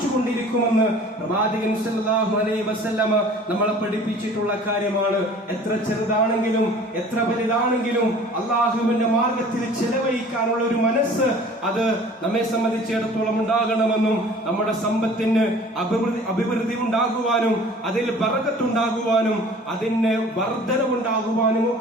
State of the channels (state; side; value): normal; both; correlation 0.48